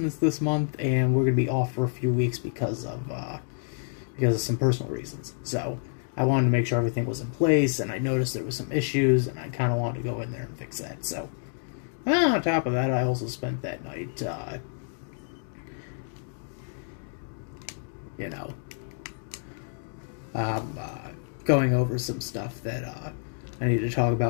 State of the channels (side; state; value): right; silent; digital silence